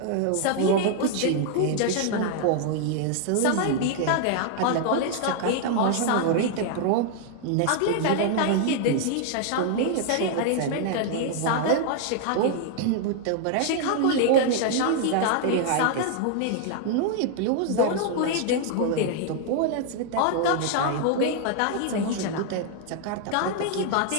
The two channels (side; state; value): both; different; correlation 0.00